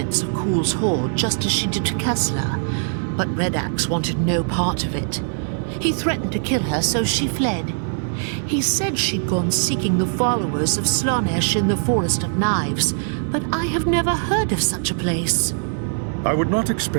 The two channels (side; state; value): left; silent; 65 dB below the other